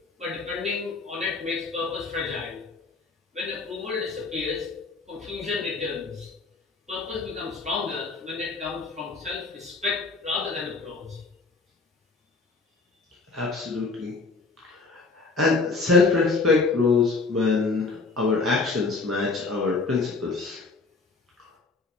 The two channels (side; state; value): right; quieter; 4.0 dB